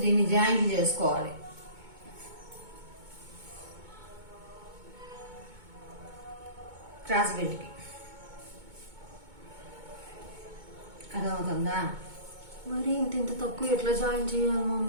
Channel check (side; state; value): left; late; 2.2 ms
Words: దీన్ని జాయింట్ చేసుకోవాలి. క్రాస్ బెల్ట్కి అర్థమవుతుందా? మరి ఇంత తక్కువ ఎట్లా జాయిన్ చేయాలి